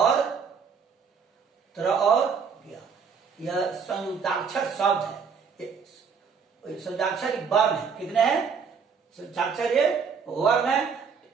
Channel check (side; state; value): left; quieter; 6.1 dB